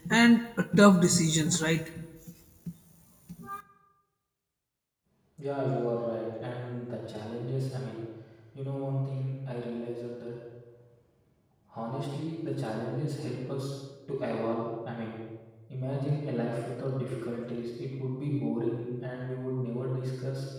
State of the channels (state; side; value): identical; both; correlation 1.00